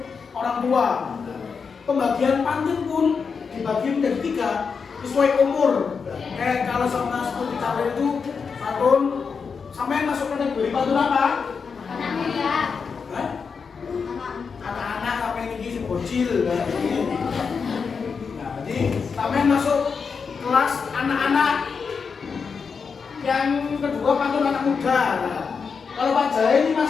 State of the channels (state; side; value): quieter; right; 5.6 dB